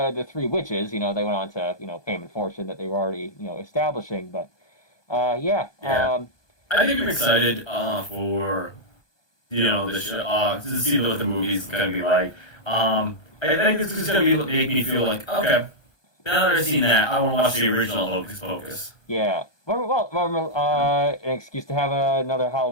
three witches. You know, they went on to fame and fortune that they were already establishing. But yeah, yeah. I think I'm excited for the show, to see what the movie's gonna be like. I think it's just gonna make me feel like, okay, now that I've seen that, I want to watch the original Hocus Pocus. yeah. An excuse to have another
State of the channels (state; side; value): late; right; 1.2 ms